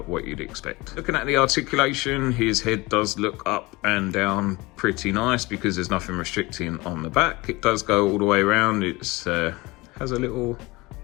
what you'd expect. Looking at the articulation, his head does look up and down pretty nice because there's nothing restricting on the back. It does go all the way around. It's has a little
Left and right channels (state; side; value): quieter; right; 22.7 dB